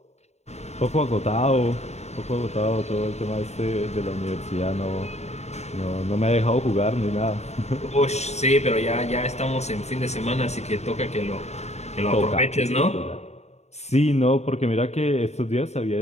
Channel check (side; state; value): right; late; 0.32 ms